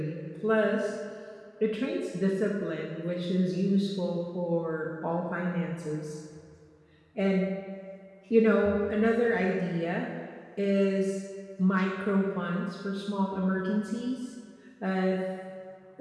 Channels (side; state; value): both; identical; correlation 1.00